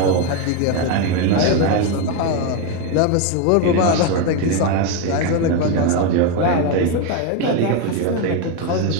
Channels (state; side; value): different; both; correlation 0.02